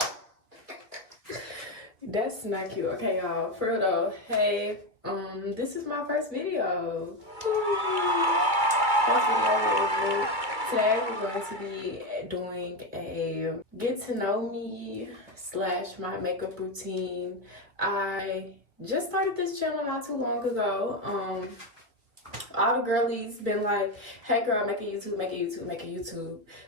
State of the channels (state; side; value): late; left; 2.2 ms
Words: That's not cute. Okay, y'all. For real though. Hey, this is my first video. Today we're going to be doing a get to know me / my makeup routine. I just started this channel not too long ago. All the girlies been like, hey girl, make a YouTube, make a YouTube, make a YouTube.